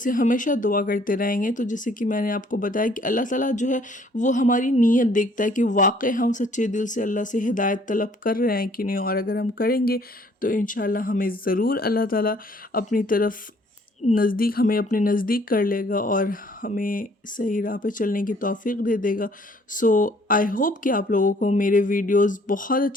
ہمیشہ دعا کرتے رہیں گے تو جیسے کہ میں نے آپ کو بتایا کہ اللہ تعالیٰ جو ہے وہ ہماری نیت دیکھتا ہے کہ واقع ہم سچے دل سے اللہ سے ہدایت طلب کر رہے ہیں کہ نہیں، اور اگر ہم کریں گے تو انشاءاللہ ہمیں ضرور اللہ تعالیٰ اپنی طرف ہمیں اپنے نزدیک کر لے گا اور ہمیں صحیح راہ پہ چلنے کی توفیق دے دے گا۔ سو آئی ہوپ کہ آپ لوگوں کو میرے ویڈیوز بہت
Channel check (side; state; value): both; normal; correlation 0.60